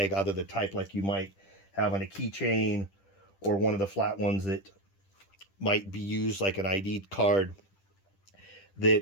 either the type like you might have on a keychain or one of the flat ones that might be used like an ID card,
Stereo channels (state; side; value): late; right; 10 ms